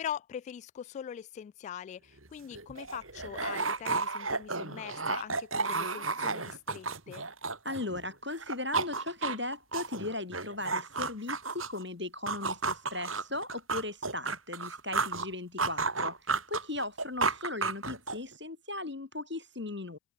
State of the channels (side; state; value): both; normal; correlation -0.20